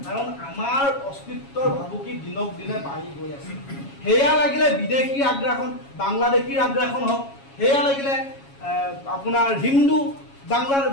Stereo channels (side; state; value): right; late; 7.2 ms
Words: কাৰণ আমাৰ অস্তিত্বৰ ভাবুকি দিনক দিনে বাঢ়ি গৈ আছে। সেয়া লাগিলে বিদেশীৰ আগ্ৰাসন, বাংলাদেশীৰ আগ্ৰাসন হওক, সেয়া লাগিলে আপোনাৰ বাংলাৰ